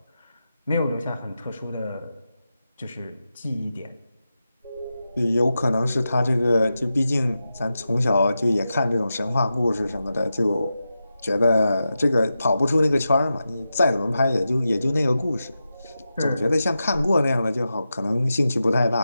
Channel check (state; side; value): inverted; both; correlation -0.91